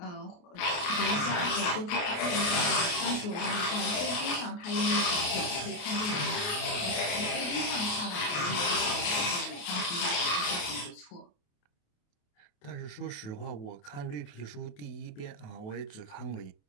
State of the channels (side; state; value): right; late; 28 ms